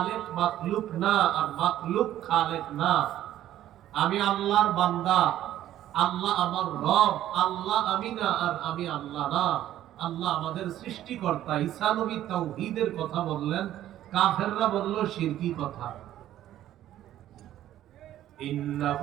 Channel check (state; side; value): quieter; left; 12.6 dB